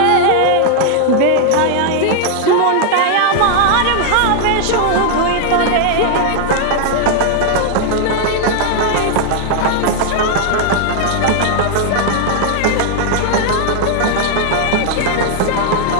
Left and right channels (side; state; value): both; different; correlation 0.00